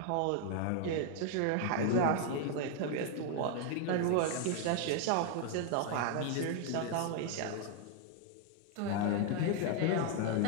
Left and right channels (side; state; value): both; different; correlation 0.00